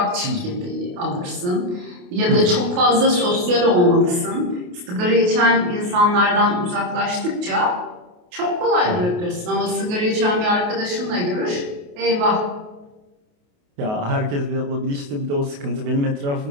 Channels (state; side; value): late; left; 28 ms